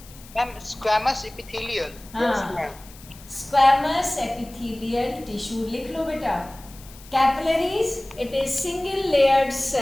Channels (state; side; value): noise; left; hiss, 21 dB below the sound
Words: Ma'am squamous epithelial. हाँ, स्क्वैमस एपिथेलियल टिश्यू लिख लो बेटा. Capillaries it is single layered